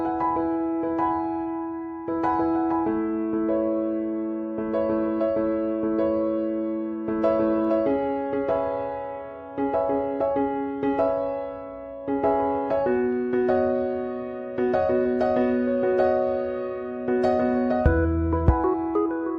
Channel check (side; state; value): both; identical; correlation 1.00